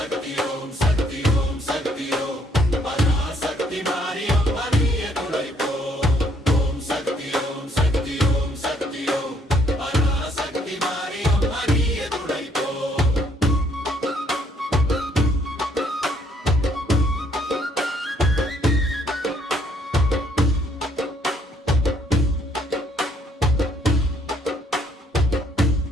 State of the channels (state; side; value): normal; both; correlation 0.67